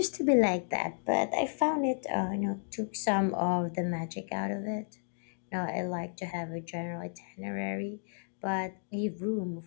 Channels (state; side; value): silent; right; digital silence